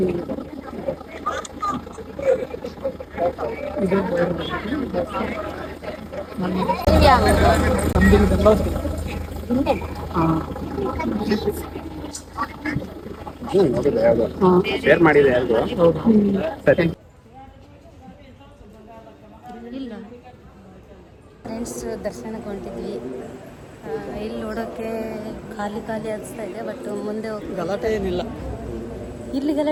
ಶೇರ್ ಮಾಡಿದೆ ಯಾರಿಗೂ. ಸರಿ. ಇಲ್ಲ ಫ್ರೆಂಡ್ಸ್, ದರ್ಶನಕ್ಕೆ ಹೊಂಟಿದ್ವಿ. ಇಲ್ಲಿ ನೋಡೋಕ್ಕೆ ಖಾಲಿ ಅನಿಸ್ತಾ ಇದೆ. ಬಟ್ ಮುಂದೆ ಗಲಾಟೆ ಏನಿಲ್ಲ. ಇಲ್ಲಿ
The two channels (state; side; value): identical; both; correlation 1.00